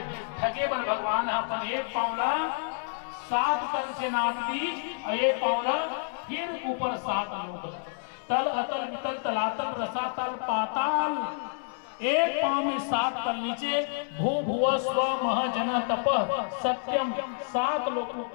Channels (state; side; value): silent; right; 59 dB below the other